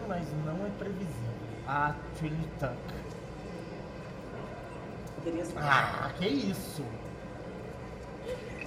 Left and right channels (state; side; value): identical; both; correlation 1.00